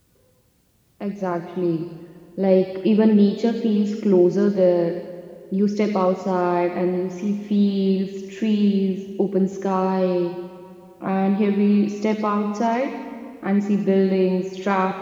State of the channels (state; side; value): identical; both; correlation 1.00